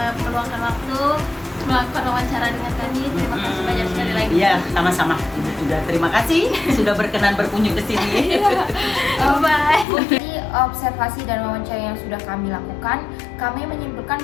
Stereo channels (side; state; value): right; drops out; at 9.9 s